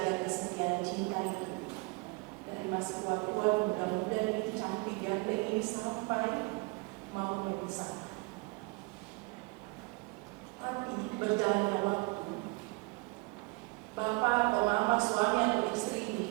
kesetiaan cinta itu. Dari masih tua-tua, muda-muda ini cantik ganteng ini sampai mau memisah. Tapi berjalannya waktu, bapak atau mama, suami atau istri ini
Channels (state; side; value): quieter; left; 27.7 dB